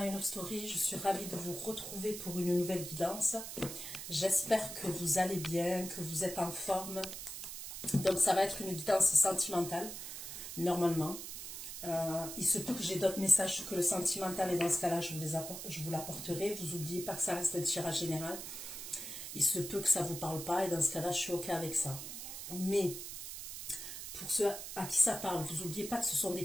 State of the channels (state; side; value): noise; right; hiss, 8 dB below the sound